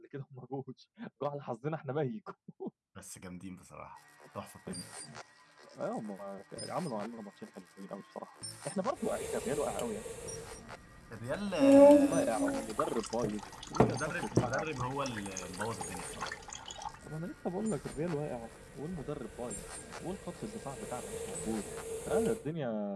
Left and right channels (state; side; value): identical; both; correlation 1.00